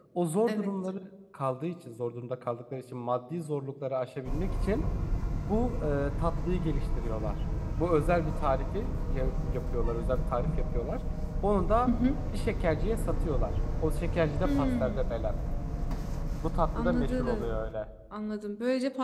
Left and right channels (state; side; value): identical; both; correlation 1.00